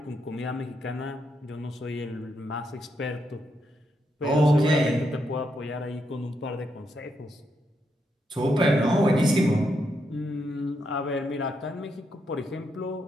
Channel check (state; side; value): normal; both; correlation 0.81